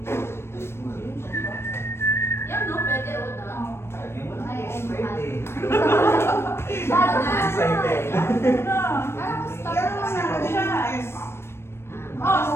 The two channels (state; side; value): late; right; 0.12 ms